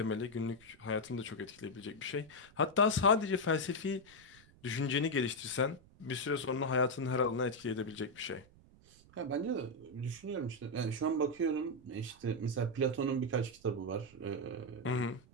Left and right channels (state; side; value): noise; right; rumble, 25 dB below the sound